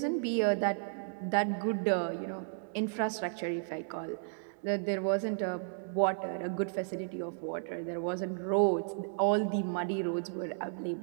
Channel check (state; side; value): silent; left; digital silence